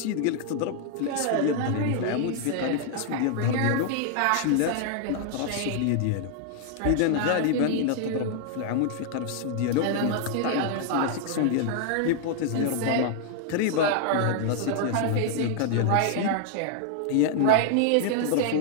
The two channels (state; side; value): different; both; correlation 0.00